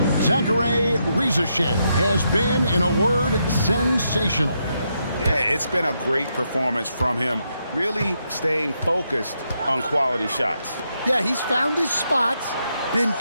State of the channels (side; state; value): both; inverted; correlation -0.80